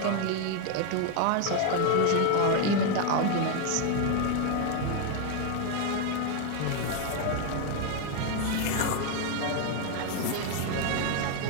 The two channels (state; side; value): different; both; correlation 0.01